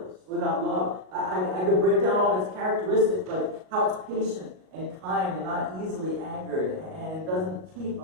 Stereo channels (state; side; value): late; left; 38 ms